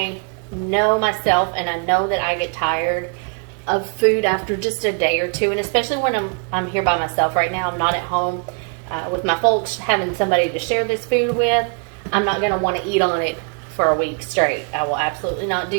know myself, and I know that I get tired of food after just a day or two, and especially when I'm here by myself right now. I'm not at home with my folks, having somebody to share this food with. I'm not going to want to eat on it for a week straight. I will absolutely not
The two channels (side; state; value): left; quieter; 39.1 dB